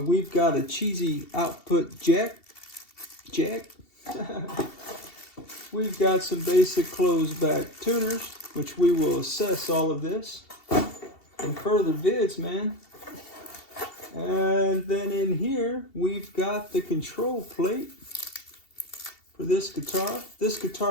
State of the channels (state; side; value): late; right; 2.7 ms